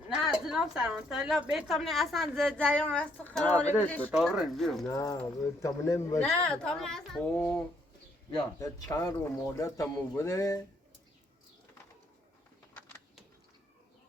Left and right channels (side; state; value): both; normal; correlation 0.70